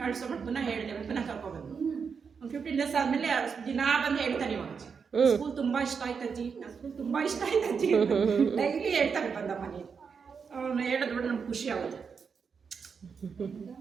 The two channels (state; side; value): quieter; left; 6.0 dB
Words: ಪುನಃ ಹೇಳಿದೆ, ಪುನಃ ಕರ್ಕೊಬಂದು ಒಂದು 15 days ಆದಮೇಲೆ ದಿನ ಬಂದು ಹೇಳ್ತಾನೆ. ಇವಾಗ ಸ್ಕೂಲ್ ತುಂಬ ಇಷ್ಟ ಆಯ್ತಜ್ಜಿ, ನನ್ನ ಸ್ಕೂಲ್ ತುಂಬ ಇಷ್ಟ ಆಯ್ತಜ್ಜಿ ಡೈಲಿ ಹೇಳ್ತಾನೆ ಬಂದ ಮನೆ. ಅವನು ಹೇಳಿದ್ಬಿಟ್ಟು ನಮ್ಗೆ ಖುಷಿ ಆಗುತ್ತೆ.